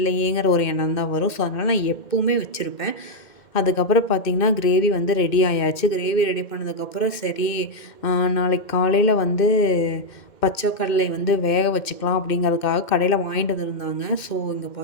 ஒரு எண்ணம் தான் வரும். ஸோ அதனால் நான் எப்போவுமே வச்சுருப்பேன். அதுக்கப்புறம் பார்த்திங்கன்னா கிரேவி வந்து ரெடி ஆயாச்சு. கிரேவி ரெடி பண்ணதுக்கப்புறம் சரி நாளைக்கு காலையில் வந்து பச்சை கடலை வந்து வேக வச்சுக்கலாம் அப்படிங்கிறதுக்காக கடையில் வாங்கிட்டு வந்துருந்தாங்க. ஸோ இங்கே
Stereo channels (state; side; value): late; right; 2.1 ms